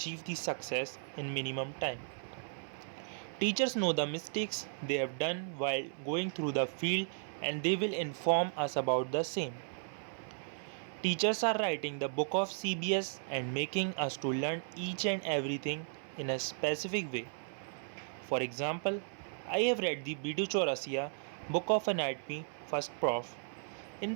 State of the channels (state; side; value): silent; left; 54 dB below the other